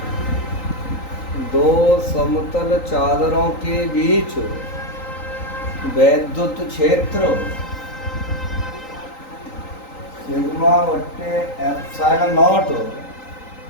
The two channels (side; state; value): right; late; 3.9 ms